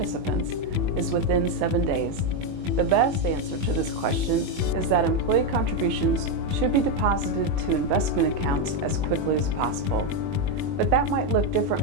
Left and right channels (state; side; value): late; left; 21 ms